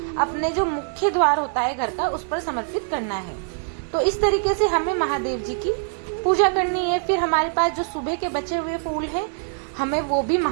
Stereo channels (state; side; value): silent; left; 62 dB below the other